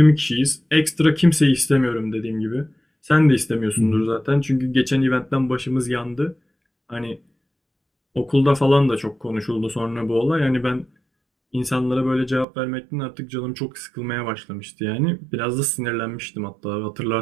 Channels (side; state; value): left; drops out; at 12.5 s